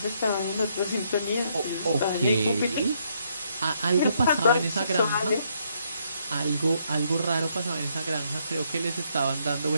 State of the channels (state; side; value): inverted; both; correlation -0.72